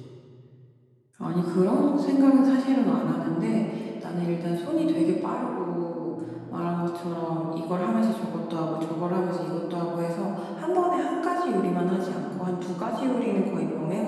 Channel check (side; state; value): both; identical; correlation 1.00